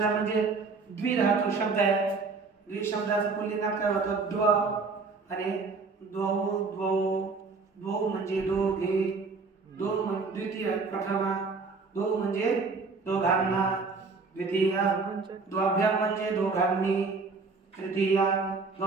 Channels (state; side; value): quieter; left; 4.3 dB